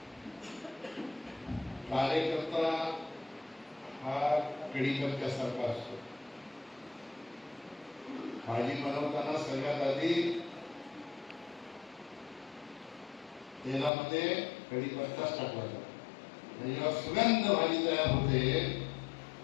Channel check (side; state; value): right; drops out; at 13.9 s